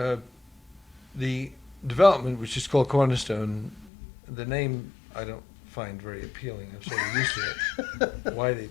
the development, which is called Cornerstone, the name I don't find very appealing. I'm sort of used to it. Why they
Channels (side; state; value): right; drops out; at 3.9 s